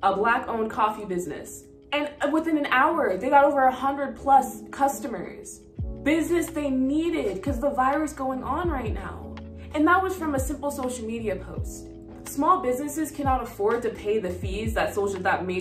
a Black-owned coffee business, and within an hour, they got over 100+ customers. Business they needed because the virus going on right now. And that was from a simple social media post. Small businesses cannot afford to pay the fees that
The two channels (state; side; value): identical; both; correlation 1.00